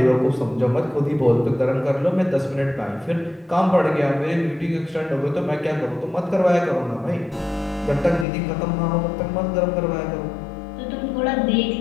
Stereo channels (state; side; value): drops out; right; at 8.2 s